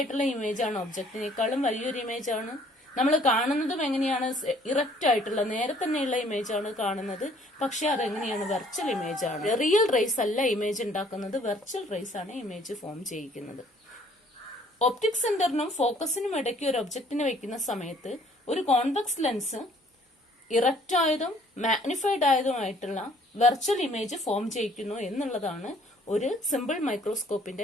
ഇമേജ് ആണ്, ഒബ്ജക്റ്റിനേക്കാളും വലിയൊരു ഇമേജ് ആണ്. നമ്മൾ കാണുന്നതും എങ്ങനെയാണ്? ഇറക്റ്റ് ആയിട്ടുള്ള നേരെ തന്നെയുള്ള ഇമേജ് ആണ് കാണുന്നത്. പക്ഷെ അതെങ്ങനെയാണ്? വെർച്വൽ ഇമേജ് ആണ്. റിയൽ റേസ് അല്ല ഇമേജ് ഉണ്ടാക്കുന്നത്, വെർച്വൽ റേസ് ആണ് ഇമേജ് ഫോം ചെയ്യിക്കുന്നത്. ഒപ്റ്റിക് സെന്ററിനും ഫോക്കസിനും ഇടയ്ക്ക് ഒരു ഒബ്ജക്റ്റിനെ വെക്കുന്ന സമയത്ത് ഒരു കോൺവെക്സ് ലെൻസ് ഇറക്റ്റ് ആയതും മാഗ്നിഫൈഡ് ആയതുമായിട്ടുള്ള വെർച്വൽ ഇമേജ് ഫോം ചെയ്യിക്കുന്നു എന്നുള്ളതാണ് ഒരു സിമ്പിൾ മൈക്രോസ്കോപ്പിന്റെ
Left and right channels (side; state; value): both; normal; correlation 0.59